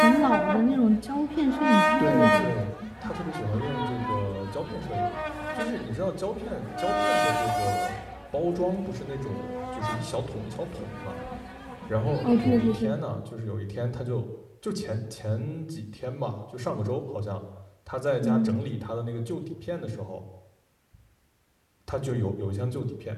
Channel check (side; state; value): both; identical; correlation 1.00